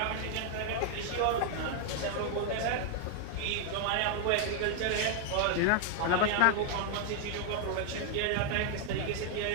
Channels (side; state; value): both; different; correlation 0.00